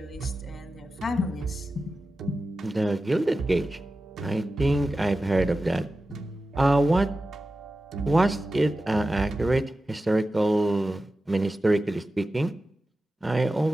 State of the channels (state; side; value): normal; both; correlation 0.94